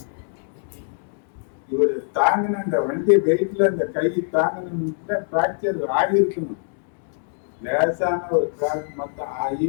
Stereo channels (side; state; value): right; silent; digital silence